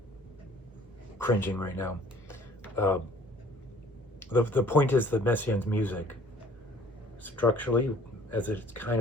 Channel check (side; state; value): both; normal; correlation 0.54